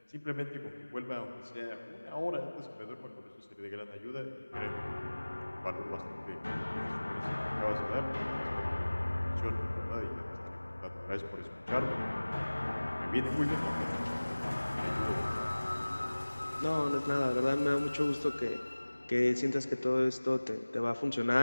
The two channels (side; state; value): both; inverted; correlation -1.00